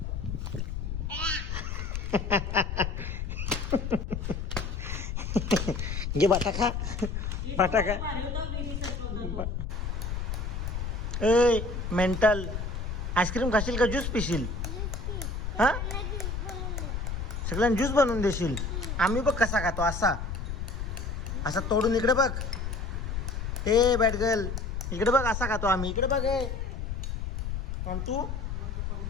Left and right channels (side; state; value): left; noise; rumble, 3 dB below the sound